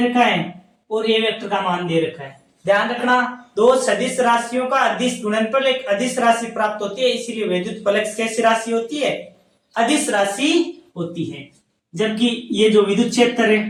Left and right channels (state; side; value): identical; both; correlation 1.00